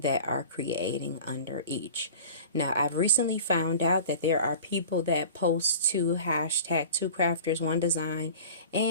are creating under each. Now, I've recently found out that there are people that post to hashtag Two Crafters One Design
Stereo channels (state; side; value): inverted; both; correlation -0.40